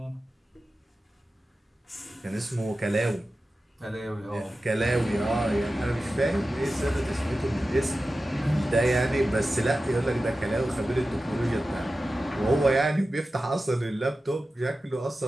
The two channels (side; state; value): both; normal; correlation 0.94